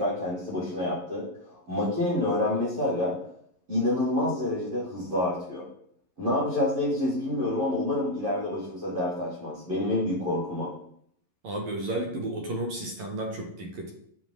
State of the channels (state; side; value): late; left; 11 ms